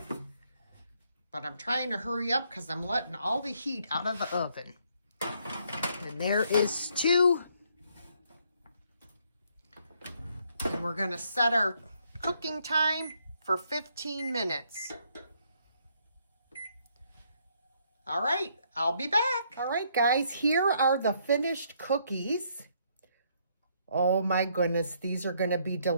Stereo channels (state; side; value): inverted; both; correlation -0.70